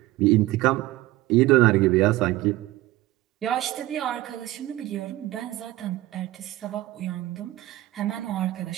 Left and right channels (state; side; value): quieter; left; 17.0 dB